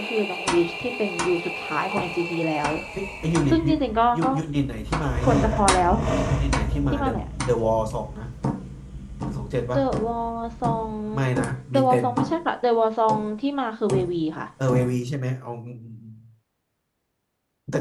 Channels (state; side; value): identical; both; correlation 1.00